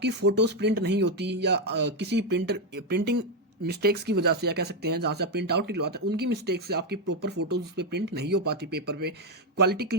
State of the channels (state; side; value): normal; both; correlation 0.05